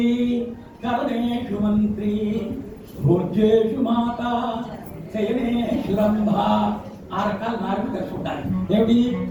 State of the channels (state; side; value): identical; both; correlation 1.00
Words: కరణేషు మంత్రి, భోజ్యేషు మాత, శయనేషు రంభ. ఆ రకాల మార్పులు కలిసి ఉంటాయి. ఏమిటి?